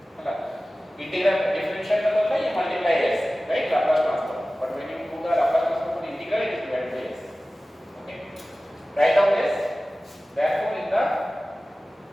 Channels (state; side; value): normal; both; correlation 0.96